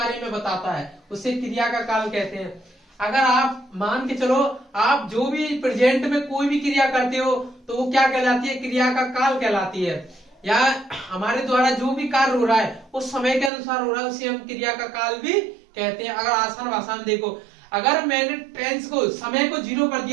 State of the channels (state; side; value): drops out; left; at 13.5 s